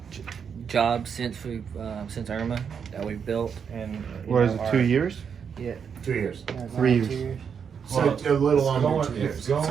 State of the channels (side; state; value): left; quieter; 6.9 dB